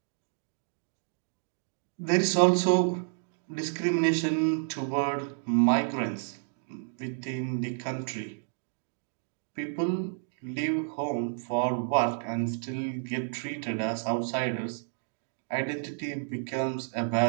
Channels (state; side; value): silent; left; digital silence